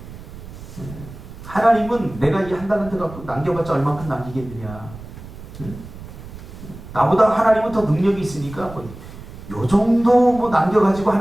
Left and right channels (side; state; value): right; noise; rumble, 15 dB below the sound